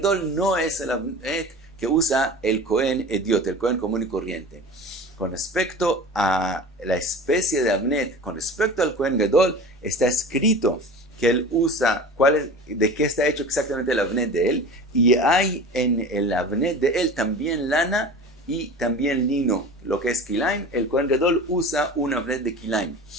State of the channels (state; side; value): normal; both; correlation 0.36